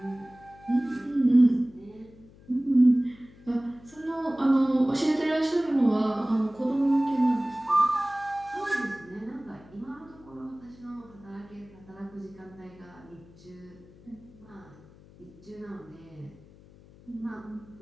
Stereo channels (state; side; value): noise; left; hum, 23 dB below the sound